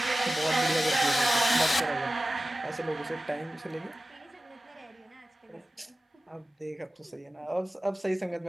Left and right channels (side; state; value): both; normal; correlation 0.95